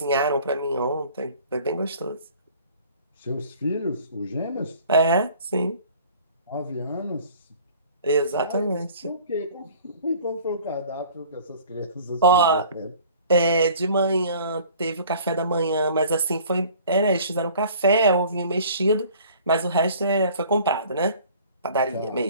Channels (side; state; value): both; inverted; correlation -0.49